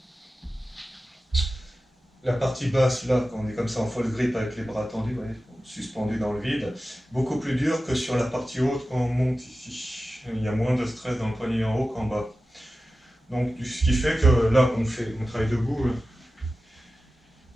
La partie basse, là, quand on est comme ça en false grip avec les bras tendus, ouais, suspendus dans le vide, beaucoup plus dur que sur la partie haute quand on monte ici. Il y a moins de stress dans le poignet en haut qu'en bas. Donc, ce qui fait que là, on travaille debout,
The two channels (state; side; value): normal; both; correlation 0.94